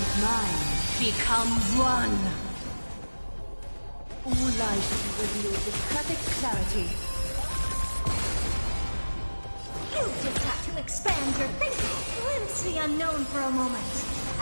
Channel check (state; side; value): inverted; both; correlation -1.00